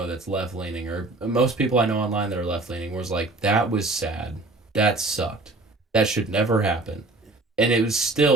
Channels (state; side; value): quieter; left; 3.1 dB